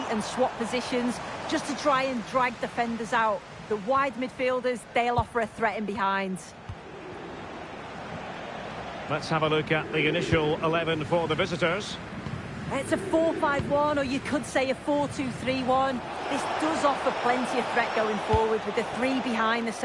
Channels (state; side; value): identical; both; correlation 1.00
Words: and swap positions just to try and drag defenders out. The wide midfielders, they'll offer a threat in behind. Let's have a look at the initial 11 for the visitors. It's a 4-5-1, or you could say a 4-2-3-1. This does offer plenty of threat going forward with the three behind the